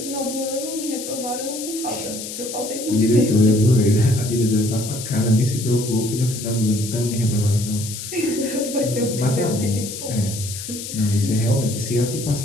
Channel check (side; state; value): left; noise; hiss, 9 dB below the sound